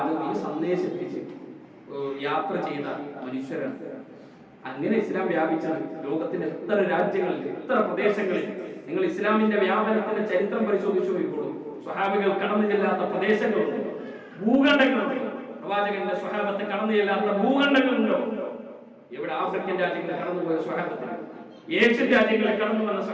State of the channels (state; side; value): identical; both; correlation 1.00